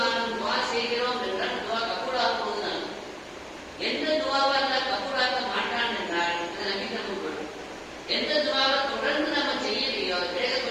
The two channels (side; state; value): both; identical; correlation 1.00